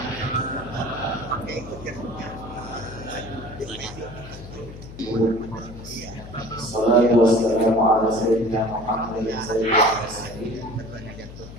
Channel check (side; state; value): left; noise; hum, 14 dB below the sound